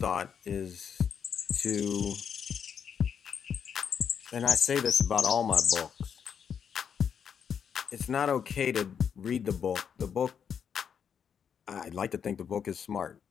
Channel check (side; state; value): right; quieter; 7.5 dB